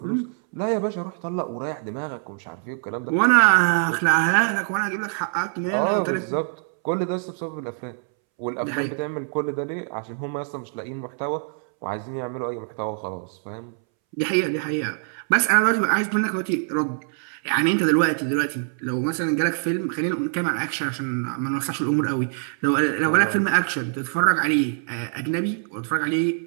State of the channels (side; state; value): left; silent; 62 dB below the other